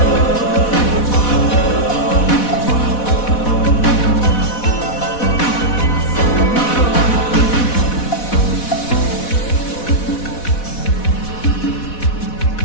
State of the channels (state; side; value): late; right; 4.1 ms